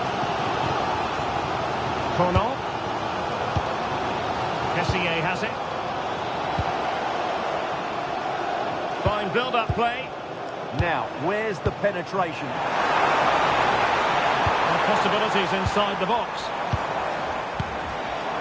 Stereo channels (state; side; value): identical; both; correlation 1.00